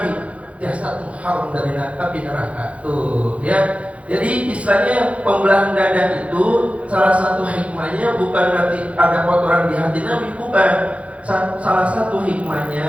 Jasadmu haram dari api neraka tuh, ya. Jadi istilahnya pembelahan dada itu salah satu hikmahnya bukan berarti ada kotoran di hati Nabi, bukan. Salah satu hikmahnya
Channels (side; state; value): left; late; 0.064 ms